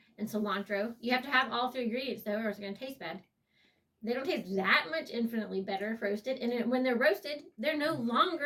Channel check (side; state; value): both; identical; correlation 1.00